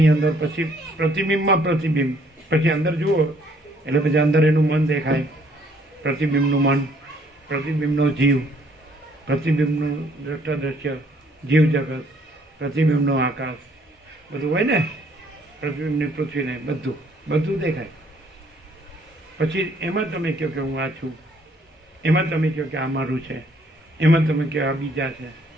અંદર પછી પ્રતિબિંબમાં પ્રતિબિંબ, પછી અંદર જુઓ એટલે પછી અંદર એનું મન દેખાય, પ્રતિબિંબનું મન, પ્રતિબિંબનો જીવ, પ્રતિબિંબનું દ્રષ્ટા જીવ જગત, પ્રતિબિંબનો આકાશ, બધું હોય ને, પ્રતિબિંબની પૃથ્વીને બધું બધું દેખાય. પછી એમાં તમે કહો કે હું આ છું, એમાં તમે કહો કે આ મારું છે, એમાં તમે કહો આ બીજા છે,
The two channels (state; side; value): normal; both; correlation 0.64